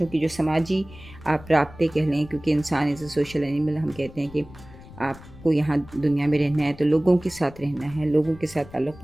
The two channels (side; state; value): left; noise; rumble, 19 dB below the sound